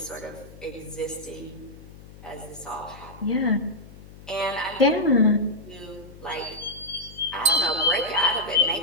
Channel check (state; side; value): noise; left; hum, 19 dB below the sound